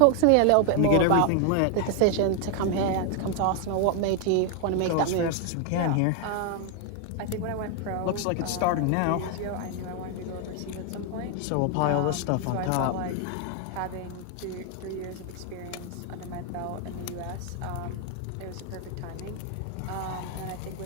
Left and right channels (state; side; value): different; both; correlation 0.00